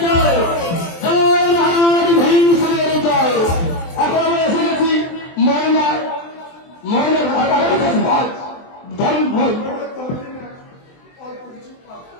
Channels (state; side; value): late; right; 23 ms